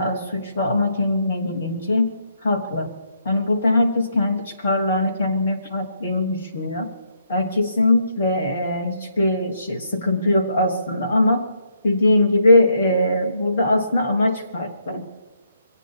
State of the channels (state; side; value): inverted; both; correlation -0.75